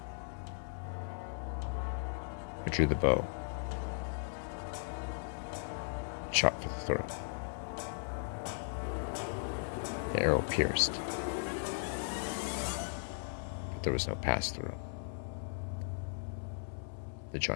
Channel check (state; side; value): silent; right; digital silence